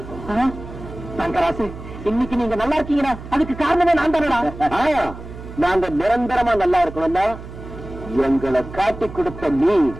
தங்கராசு, இன்னைக்கு நீங்க நல்லா இருக்கீங்கன்னா அதுக்கு காரணமே நான் தானடா. நாங்க நிரந்தரமா நல்லா இருக்கணும்னா எங்களை காட்டி கொடுத்த நீ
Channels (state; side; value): noise; right; hum, 13 dB below the sound